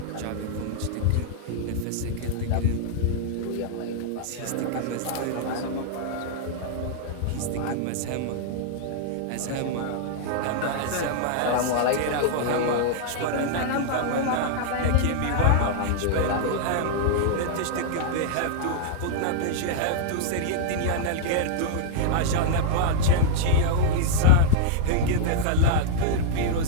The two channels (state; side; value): different; both; correlation -0.01